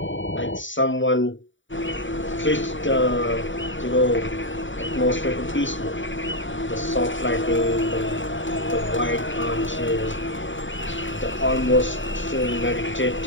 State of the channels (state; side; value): late; right; 0.55 ms